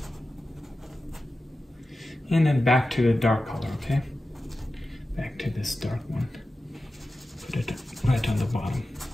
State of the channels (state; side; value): normal; both; correlation 0.93